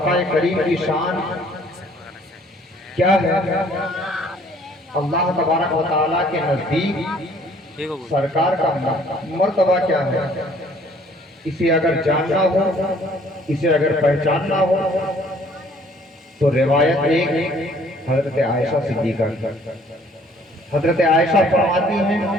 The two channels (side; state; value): both; normal; correlation 0.58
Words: کریم کی شان کیا ہے؟ اللہ تبارک و تعالیٰ کے نزدیک سرکار کا مرتبہ کیا ہے؟ اسے اگر جاننا ہو، اسے اگر پہچاننا ہو تو روایت ایک حضرت عائشہ صدیقہ کی۔ حضرت عائشہ فرماتی ہیں